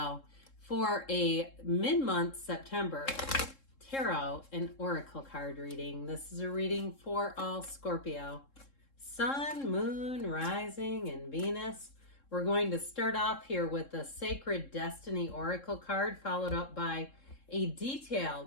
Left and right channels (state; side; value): late; right; 3.7 ms